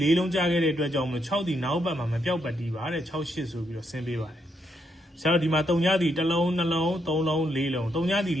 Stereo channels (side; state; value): both; normal; correlation 0.78